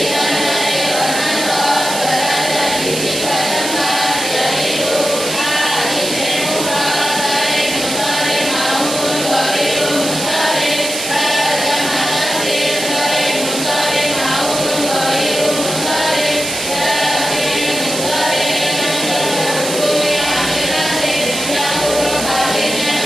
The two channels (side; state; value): right; noise; hiss, 5 dB below the sound